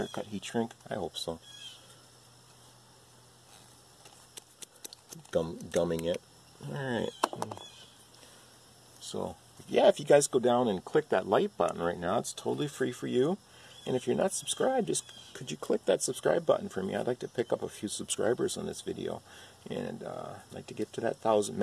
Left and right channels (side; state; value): both; identical; correlation 1.00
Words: cut heat shrink? I hope so. Gumming it. Alright. So, yeah, if you guys go down and click that like button right now, it's totally free for you. And if you're not subscribed, just could you click that subscribe button for me? I'd like to pick up a few subscribers on this video. And I'd like to get to that